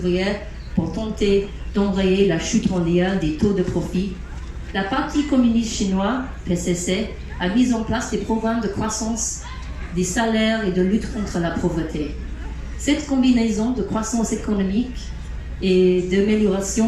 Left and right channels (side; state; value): both; identical; correlation 1.00